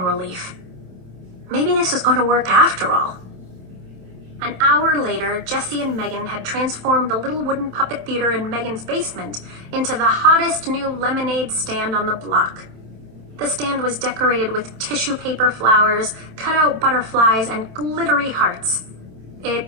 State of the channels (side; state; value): left; late; 27 ms